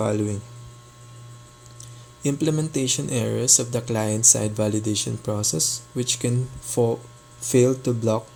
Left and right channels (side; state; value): both; identical; correlation 1.00